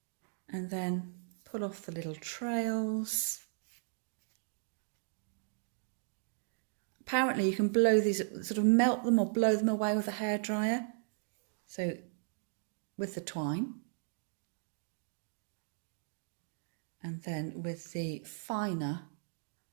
And then pull off the little trails. Apparently you can blow these, sort of melt them or blow them away with a hairdryer. So with the twine. And then with the finer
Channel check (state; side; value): silent; left; digital silence